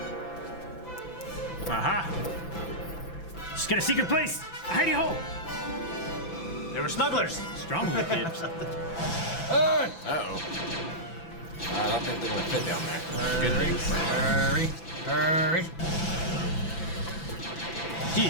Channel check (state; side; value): late; right; 5.9 ms